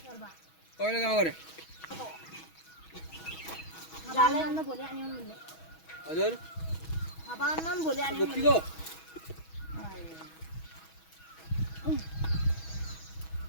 कहिले गाउँ गरे हजुर गोप्तीको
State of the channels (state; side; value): late; right; 6.2 ms